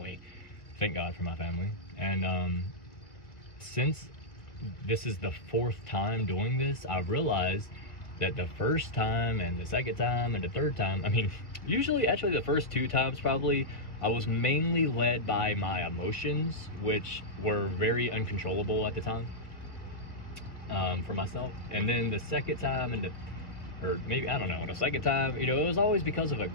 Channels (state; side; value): late; right; 2.0 ms